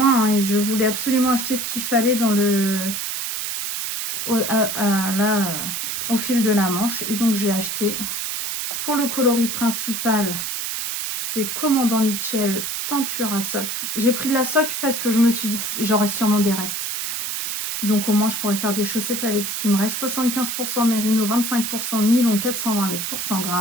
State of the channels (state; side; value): noise; right; hiss, 3 dB below the sound